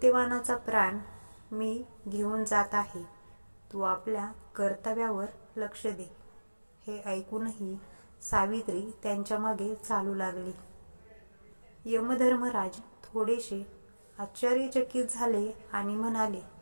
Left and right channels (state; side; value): inverted; both; correlation -1.00